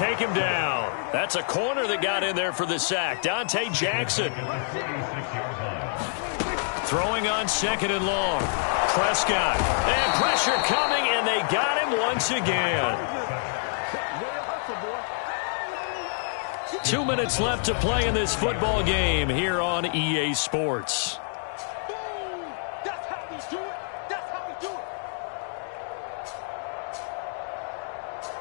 him down. That's a corner that got in there for the sack. Dante Jackson. Throwing on 2nd and long. Prescott. And pressure coming, and they got him once again. 2 minutes left to play in this football game here on EA Sports. That's how we do it. That's how we do it.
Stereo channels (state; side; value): silent; right; digital silence